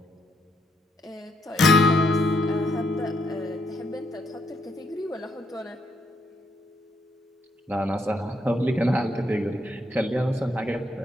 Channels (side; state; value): both; normal; correlation 0.74